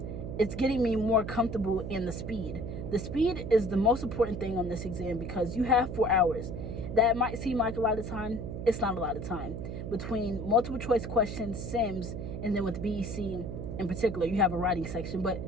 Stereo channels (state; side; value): noise; right; hum, 6 dB below the sound